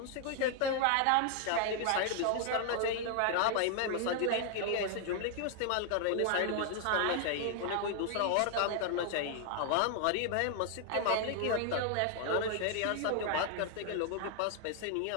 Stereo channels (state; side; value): different; both; correlation 0.00